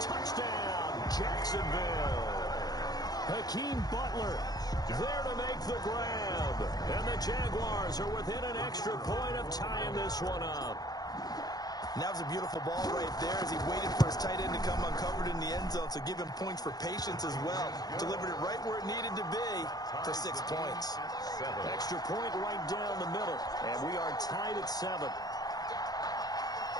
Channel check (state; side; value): late; right; 0.19 ms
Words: Jacksonville. Hakeem Butler there to make the grab. And the Jaguars are within an extra point of tying this one up. And that was a beautiful ball right there as he waited for his tight end to come uncovered in the end zone. So give him points for patience as well. Delivered it right where it needed to be for 6 points. Extra point right down the middle. And we are tied at 7.